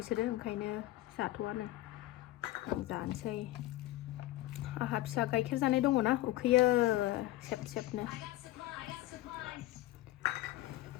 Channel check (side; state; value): right; quieter; 16.4 dB